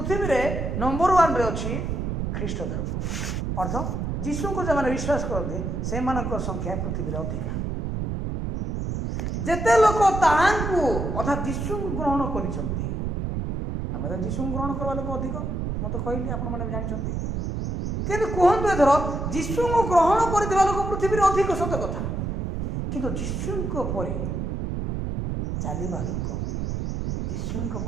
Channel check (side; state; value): right; noise; rumble, 2 dB below the sound